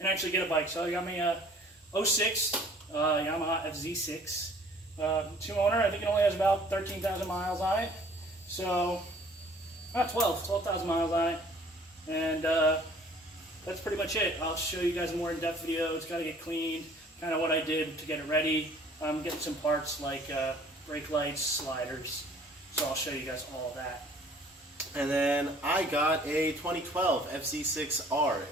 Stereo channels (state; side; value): normal; both; correlation 0.54